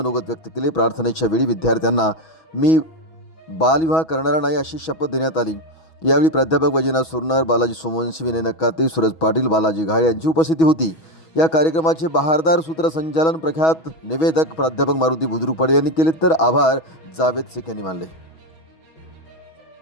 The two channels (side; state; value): right; late; 6.2 ms